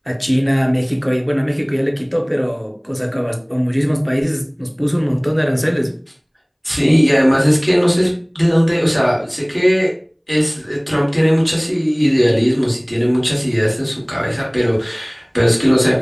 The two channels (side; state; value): both; identical; correlation 1.00